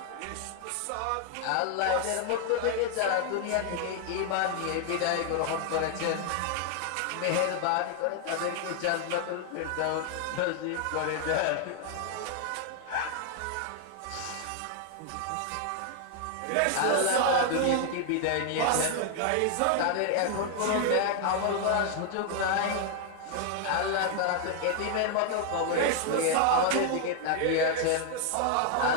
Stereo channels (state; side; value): different; both; correlation 0.00